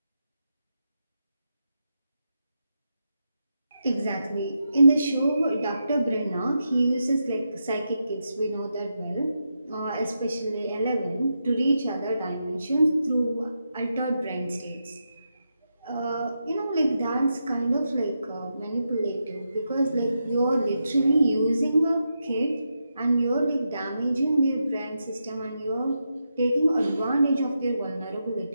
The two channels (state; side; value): inverted; both; correlation -0.86